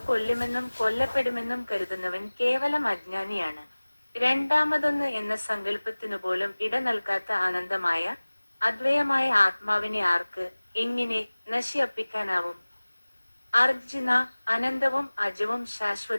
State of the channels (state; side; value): inverted; both; correlation -1.00